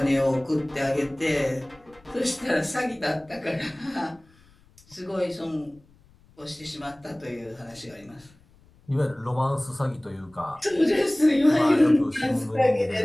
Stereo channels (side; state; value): left; noise; rumble, 29 dB below the sound